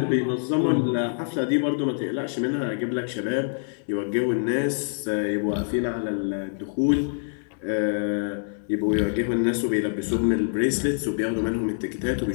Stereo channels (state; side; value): silent; right; 61 dB below the other